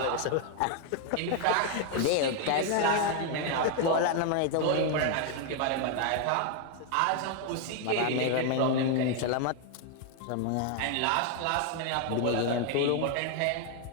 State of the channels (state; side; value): different; both; correlation 0.00